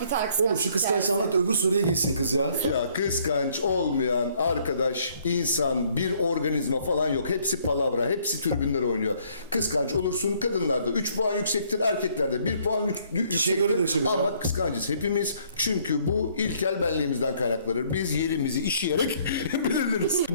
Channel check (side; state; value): both; inverted; correlation -0.64